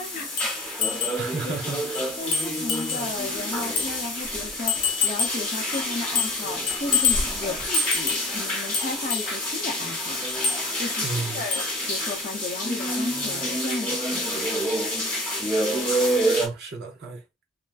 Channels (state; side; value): normal; both; correlation 0.45